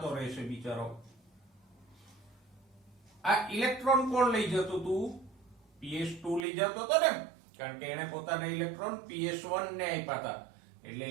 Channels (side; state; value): left; drops out; at 6.5 s